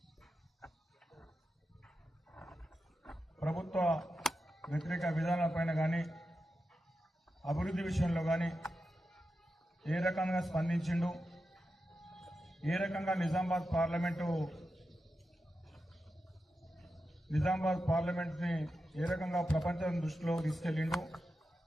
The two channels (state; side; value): normal; both; correlation 0.90